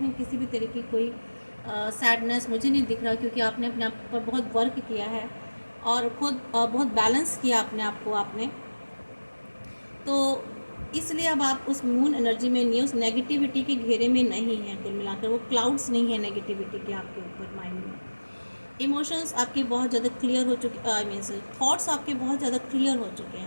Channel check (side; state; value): both; inverted; correlation -1.00